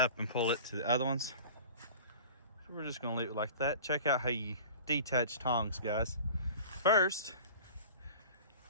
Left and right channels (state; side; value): inverted; both; correlation -0.40